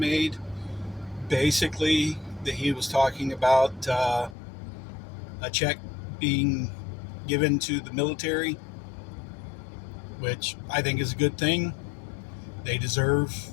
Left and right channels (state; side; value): drops out; right; at 4.4 s